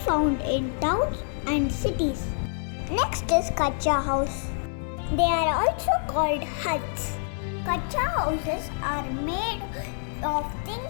in towns and cities. Next is Kacha House. They are also called huts. Kacha houses are made of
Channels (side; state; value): right; silent; 60 dB below the other